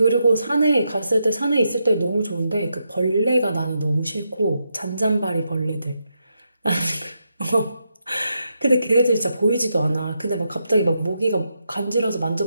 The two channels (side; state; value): both; inverted; correlation -0.83